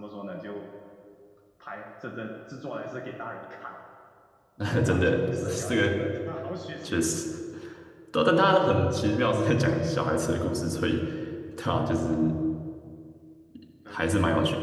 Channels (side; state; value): both; identical; correlation 1.00